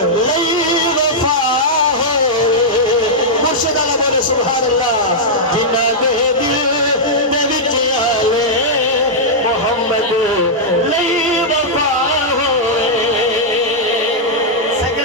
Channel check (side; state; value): both; normal; correlation -0.07